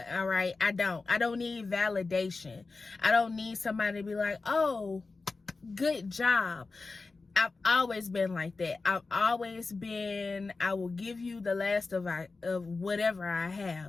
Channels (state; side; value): quieter; right; 3.9 dB